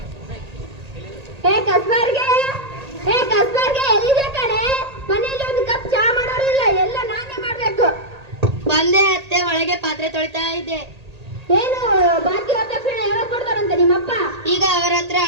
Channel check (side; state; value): left; late; 1.8 ms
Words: ಎಲ್ಲಿದೆ ಕಣೆ? ಮನೆಯಲ್ಲಿ ಒಂದು ಕಪ್ ಚಾ ಮಾಡೋರಿಲ್ಲ, ಎಲ್ಲ ನಾನೇ ಮಾಡ್ಬೇಕು. ಬಂದೆ ಅತ್ತೆ, ಒಳಗೆ ಪಾತ್ರೆ ತೊಳಿತಾ ಇದ್ದೆ. ಏನು ಬಾಕಿ ವರದಕ್ಷಿಣೆ ಯಾವಾಗ ಕೊಡ್ತಾರಂತೆ ನಿಮ್ಮಪ್ಪ? ಈಗ ಅವರ ಹತ್ರ